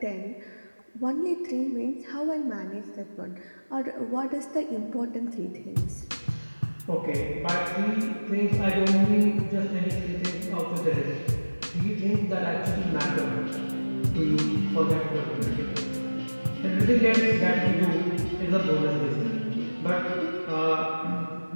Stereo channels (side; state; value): both; inverted; correlation -1.00